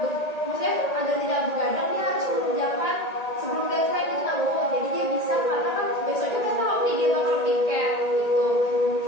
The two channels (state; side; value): late; right; 1.8 ms